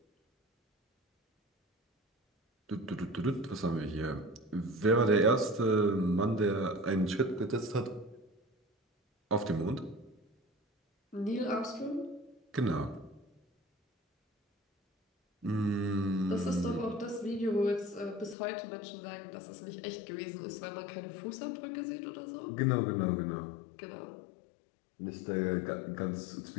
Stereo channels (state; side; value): drops out; right; at 18.4 s